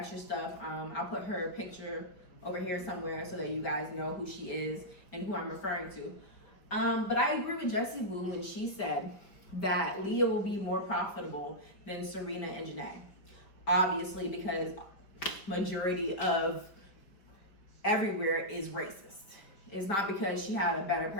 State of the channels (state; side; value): late; right; 4.8 ms